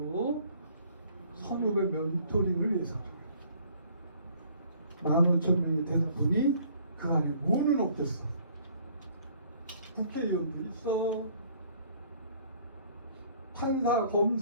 선후배 멘토링을 위해서 15,000명이 되다 보니 그 안에 뭐는 없겠어. 국회의원도 있어. 판사,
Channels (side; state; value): both; inverted; correlation -0.58